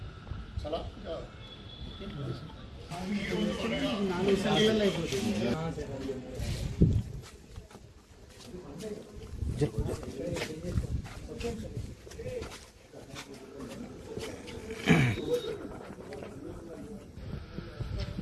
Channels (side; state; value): both; identical; correlation 1.00